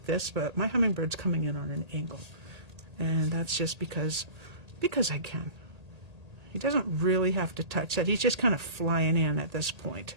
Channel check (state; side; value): late; left; 1.8 ms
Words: this, but my hummingbird's coming in on an angle. And that's just because I can. He doesn't really have to touch that. He's just kind of flying in at this point.